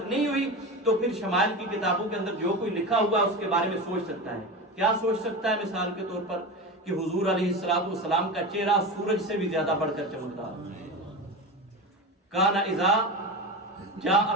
نہیں ہوئی، تو پھر شمائل کی کتابوں کے اندر جو کوئی لکھا ہوا ہے اس کے بارے میں سوچ سکتا ہے. کیا سوچ سکتا ہے؟ مثال کے طور پر کہ حضور علیہ السلام کا چہرہ سورج سے بھی زیادہ بڑھ کر چمکتا ہے. کان اذا جاء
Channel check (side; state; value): both; normal; correlation 0.24